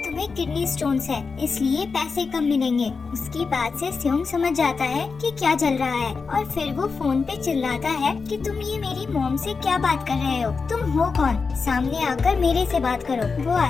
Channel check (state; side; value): quieter; right; 4.8 dB